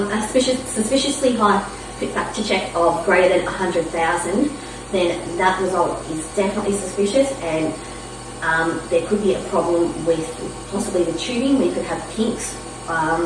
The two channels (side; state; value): both; identical; correlation 1.00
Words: suspiciously high fit factor check of greater than 100,000, then that result is definitely suspicious, and there could be a problem with possibly the tubing. We could have kinks